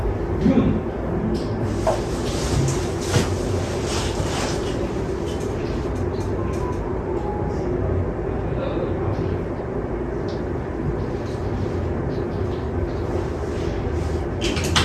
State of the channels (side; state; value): both; identical; correlation 1.00